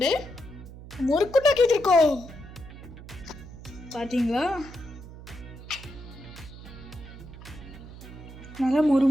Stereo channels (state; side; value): noise; right; hum, 15 dB below the sound